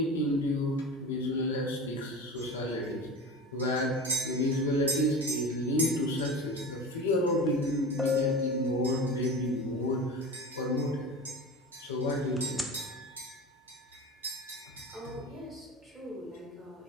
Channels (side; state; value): both; normal; correlation 0.31